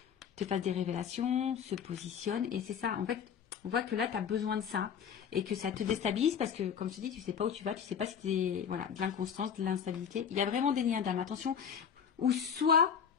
te fasse des révélations, se positionne. Et c'est ça, en fait, on voit que là, tu as besoin de ça et que ça te déstabilise parce que, comme je te dis, tu sais pas où tu vas, tu sais pas si c'est voilà, de l'inconstance, de l'instabilité. Il y a vraiment des liens d'âme, attention, ou soit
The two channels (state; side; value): quieter; right; 7.5 dB